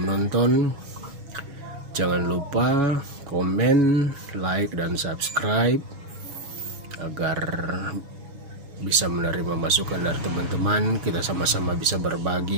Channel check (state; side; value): late; left; 7.1 ms